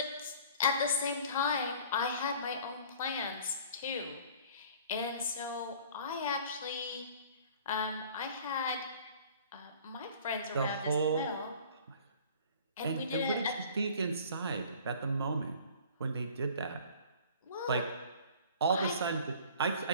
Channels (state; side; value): inverted; both; correlation -0.48